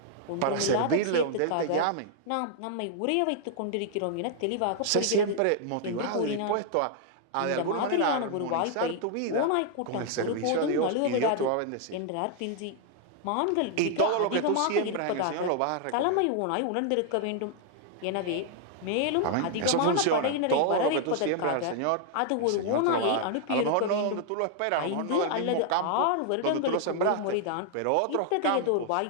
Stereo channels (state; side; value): different; both; correlation 0.00